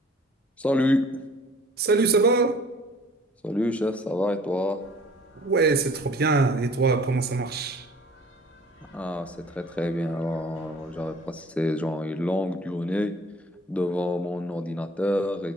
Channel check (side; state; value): both; normal; correlation 0.51